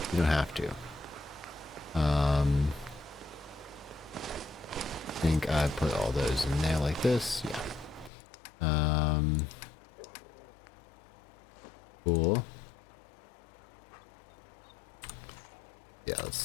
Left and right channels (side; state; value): right; drops out; at 8.1 s